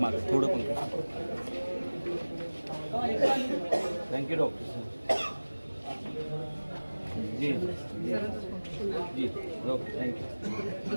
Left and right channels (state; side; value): inverted; both; correlation -1.00